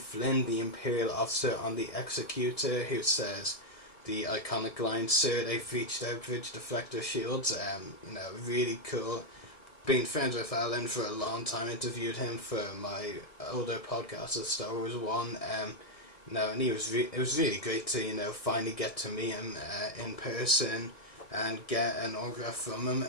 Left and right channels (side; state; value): right; late; 1.6 ms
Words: the Imperial officer on the Executor, who says the iconic line, "Sir, they've reached our bridge deflector shields." You know, really cool. Been friends with Alan for a long time, interviewed him for my older podcast, the Star Wars one. And it was really great to, you know, finally get to meet him in person and get an autograph from him.